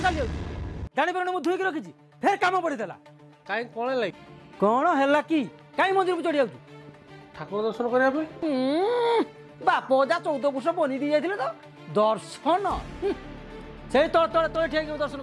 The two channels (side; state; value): both; identical; correlation 1.00